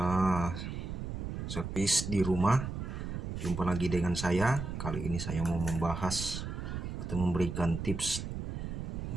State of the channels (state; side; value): noise; right; rumble, 5 dB below the sound